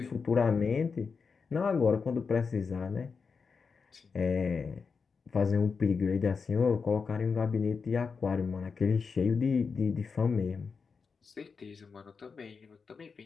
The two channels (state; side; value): quieter; right; 5.2 dB